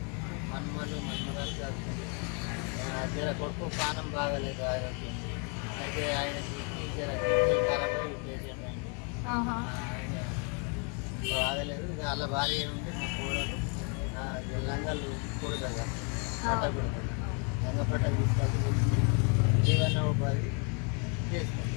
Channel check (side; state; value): right; quieter; 36.7 dB